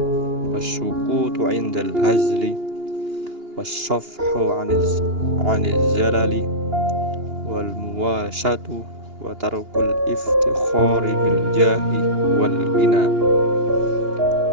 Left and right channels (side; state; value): left; late; 2.8 ms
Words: wasyukutu indal hazli wassafhu anil zalali wal muwasatu wa tarkul iftikhari bil jahi wal ghina